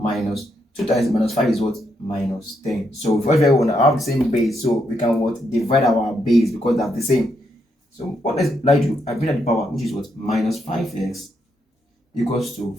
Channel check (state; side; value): normal; both; correlation 0.79